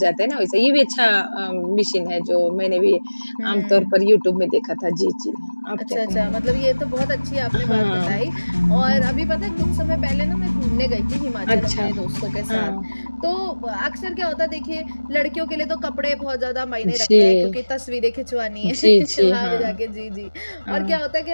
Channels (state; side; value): inverted; both; correlation -1.00